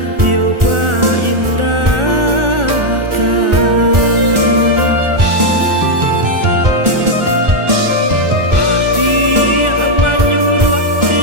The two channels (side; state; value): left; late; 1.4 ms